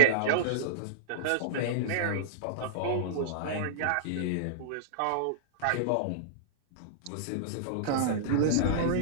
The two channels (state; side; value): different; both; correlation -0.02